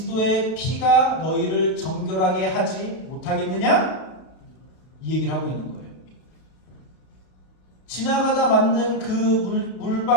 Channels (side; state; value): right; late; 32 ms